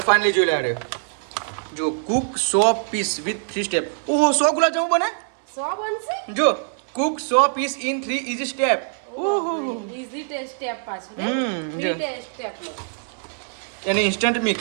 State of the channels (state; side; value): silent; left; 63 dB below the other